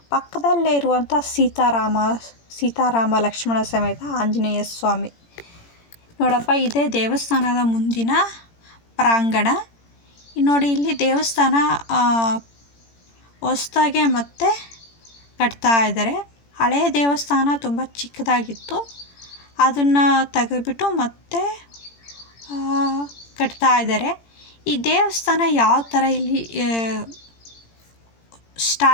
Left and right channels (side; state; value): right; late; 17 ms